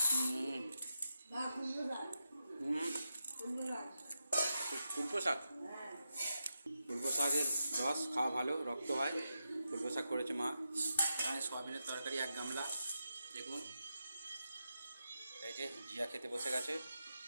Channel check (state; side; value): inverted; both; correlation -0.87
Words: কুলপো শাক, কুলপো শাকের রস খাওয়া ভালো, রক্ত হয়। কুলপো শাক করেছে মা। এখানে সোয়াবিনের তরকারি 1 গামলা, দেখুন। এই যে জিয়া খেতে বসে গেছে,